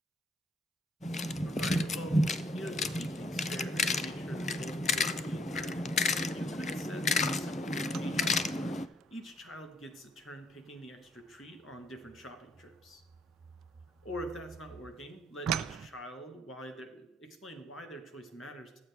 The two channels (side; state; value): both; normal; correlation 0.66